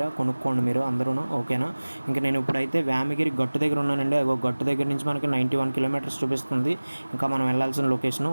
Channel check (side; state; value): both; inverted; correlation -1.00